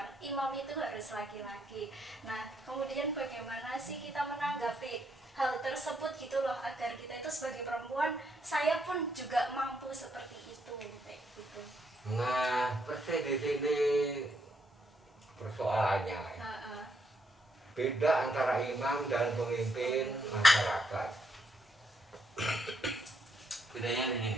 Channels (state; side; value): normal; both; correlation 0.76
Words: imam itu harus laki-laki. Nah kemudian bagaimana sih kita menanggapi hal tersebut gitu loh, agar kita itu sebagai perempuan, saya pun juga mampu seperti itu kayak gitu. Nah persis di sini persoalannya beda antara imam dan pemimpin masyarakat. Bedanya